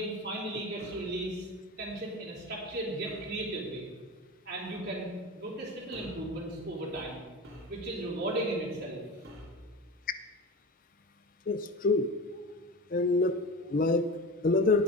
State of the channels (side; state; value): both; normal; correlation 0.29